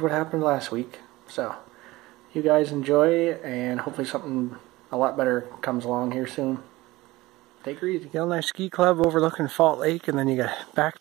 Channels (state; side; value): quieter; left; 19.4 dB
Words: what happened last week. So you guys enjoy, and hopefully something a lot better comes along here soon. Take her easy. You got a nice ski club overlooking Fault Lake, and then you got